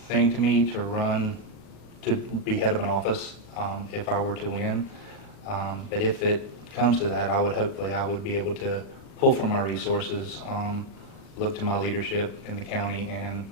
thing to me to be head of an office if I were to win. But if it comes to that, I would be able to pull from my resources, look to my leadership in the county, and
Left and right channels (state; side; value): late; right; 40 ms